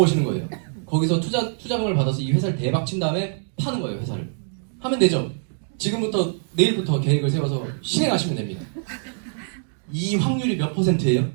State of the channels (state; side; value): silent; left; digital silence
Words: 거예요. 거기서 투자금을 받아서 이 회사를 대박 친 다음에 파는 거예요. 회사를. 하면 되죠. 지금부터 내일부터 계획을 세워서 실행하시면 됩니다. 이 확률이 몇 %예요?